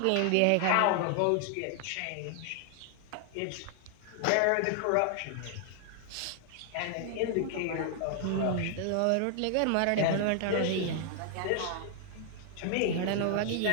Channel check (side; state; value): both; different; correlation 0.00